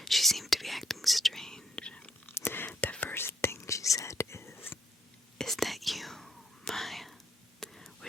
she seemed to be acting strange. The first thing she said is that you, Maya?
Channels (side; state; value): both; normal; correlation 0.72